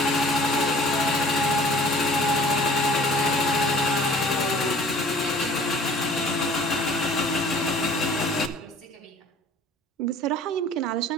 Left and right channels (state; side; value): normal; both; correlation 0.49